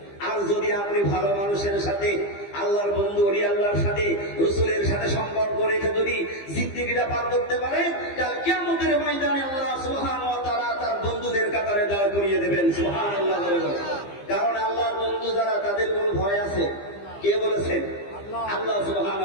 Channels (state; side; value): late; right; 15 ms